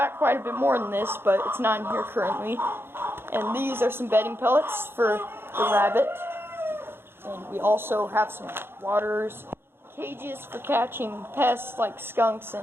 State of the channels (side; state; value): left; late; 0.11 ms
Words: quite a bit more than this, but it's not in here currently. And these are some bedding pellets for the rabbit. And we also have some waters, cages for catching pests like skunks